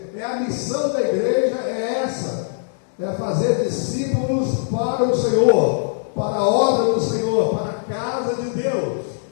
É a missão da igreja, é essa. É fazer discípulos para o Senhor, para a obra do Senhor, para a casa de Deus.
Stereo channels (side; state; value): right; silent; digital silence